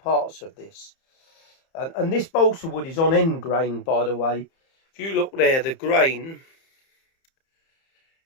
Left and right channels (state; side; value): late; right; 30 ms